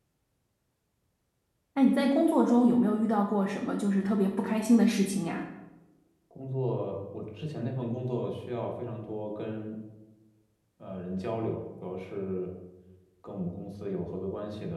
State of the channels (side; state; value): both; identical; correlation 1.00